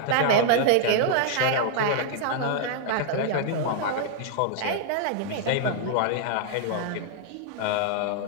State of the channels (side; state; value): both; different; correlation 0.00